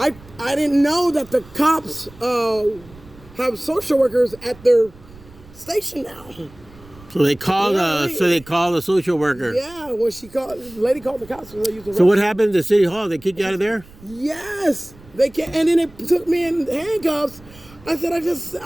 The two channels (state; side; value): noise; right; rumble, 22 dB below the sound